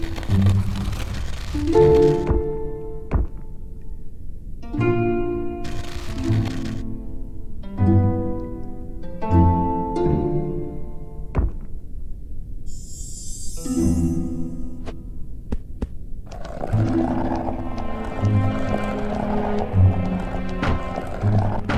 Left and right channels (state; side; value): identical; both; correlation 1.00